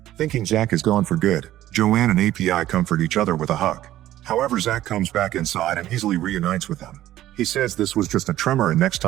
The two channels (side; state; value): left; quieter; 13.9 dB